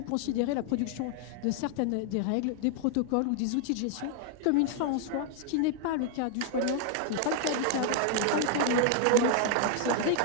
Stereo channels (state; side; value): different; both; correlation 0.00